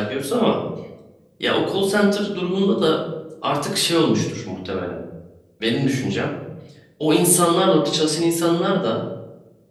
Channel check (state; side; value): identical; both; correlation 1.00